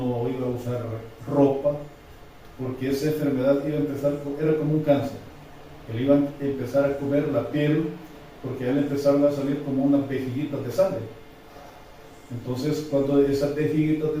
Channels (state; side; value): identical; both; correlation 1.00